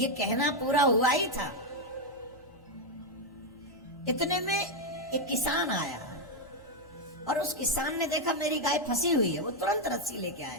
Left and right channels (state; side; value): normal; both; correlation 0.02